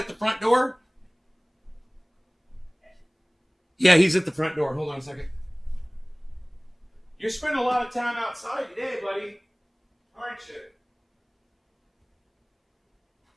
the front door? Yeah, he's at the front door. Hold on a second. You're spending a lot of time outside today, buddy. Aren't you?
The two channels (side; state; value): both; identical; correlation 1.00